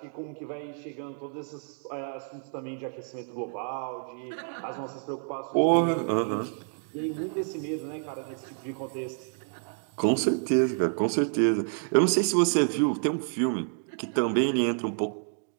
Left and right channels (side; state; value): left; silent; 59 dB below the other